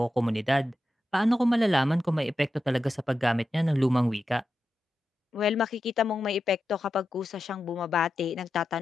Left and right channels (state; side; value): normal; both; correlation 0.90